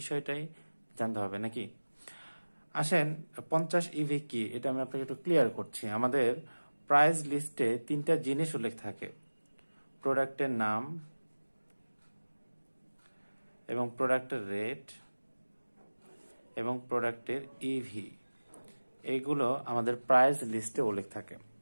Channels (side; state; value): both; inverted; correlation -1.00